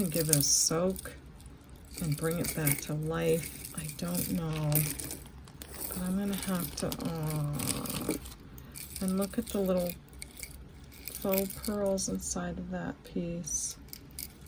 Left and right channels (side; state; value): both; identical; correlation 1.00